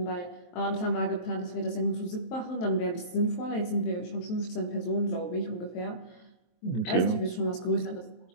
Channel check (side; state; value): right; late; 23 ms